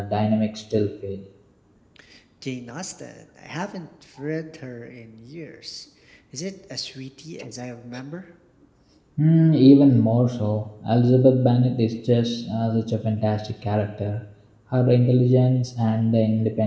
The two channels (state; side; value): identical; both; correlation 1.00